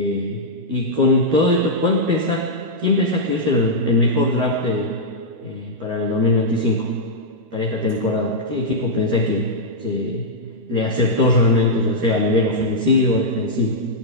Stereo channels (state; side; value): late; left; 13 ms